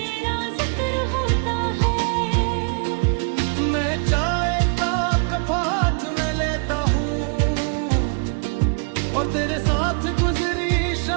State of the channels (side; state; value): left; quieter; 37.7 dB